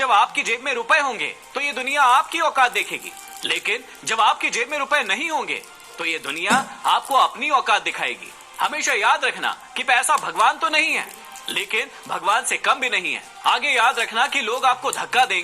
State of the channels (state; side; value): identical; both; correlation 1.00